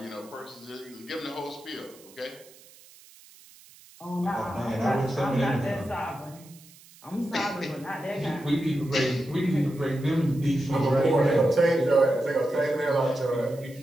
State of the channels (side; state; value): right; noise; hiss, 23 dB below the sound